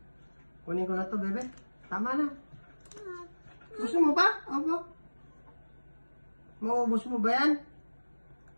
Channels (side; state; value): both; inverted; correlation -1.00